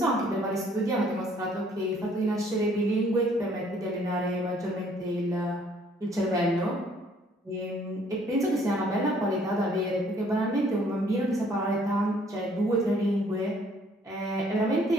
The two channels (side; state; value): both; normal; correlation 0.61